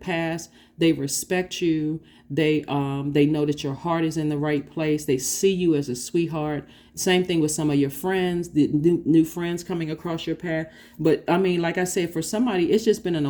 They respect you. They know that your heart is in the right place. They see you as a sweetheart. Same thing with some of your friends, the new friends coming across your path. But I mean, like I said, for somebody, it's just been an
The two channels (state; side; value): identical; both; correlation 1.00